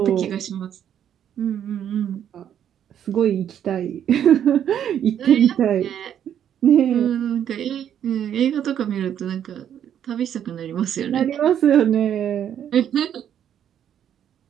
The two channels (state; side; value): quieter; left; 9.6 dB